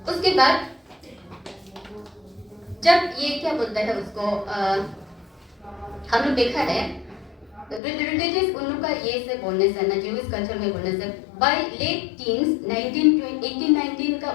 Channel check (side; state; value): right; drops out; at 7.8 s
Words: उसके बाद जब ये क्या बोलता है उसको हम लोग देखा है रिलीजियस उन लोग का ये से बोलने से ना, ज्यूइश कल्चर में बोलने से बाय लेट टीन्स 18-19 का